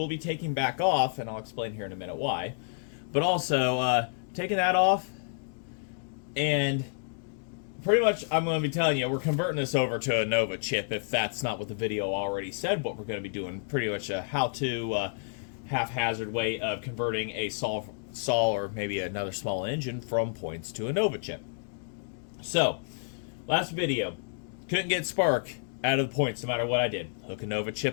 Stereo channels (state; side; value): silent; right; digital silence